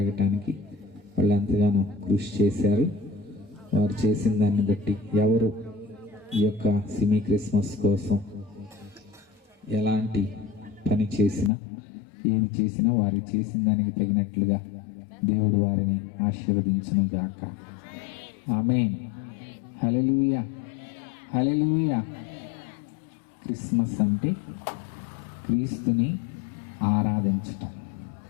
వాళ్ళు ఎంతగానో కృషి చేశారు. వారు చేసిన దాన్ని బట్టి ఎవరు ఈ యొక్క సిమీ క్రిస్మస్ కోసం ఎలాంటి పని చేసినా, ఏది చేసినా వారు చేసిన దానికి తగినట్లుగా దేవుడు వారిని ఆశీర్వదించును గాక. ఆమేన్. హల్లెలూయా, హల్లెలూయా. క్రిస్మస్ అంటే క్రీస్తుని ఆరాధించటం.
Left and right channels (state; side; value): drops out; right; at 11.5 s